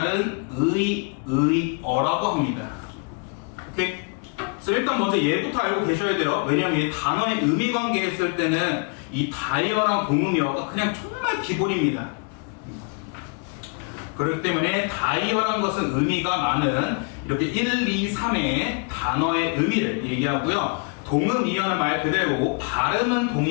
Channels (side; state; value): right; quieter; 37.0 dB